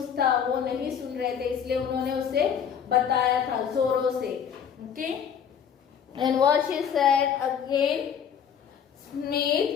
था वो नहीं सुन रहे थे, इसलिए उन्होंने उसे बताया था जोरों से। Okay, and what she said again,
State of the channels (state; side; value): quieter; right; 7.9 dB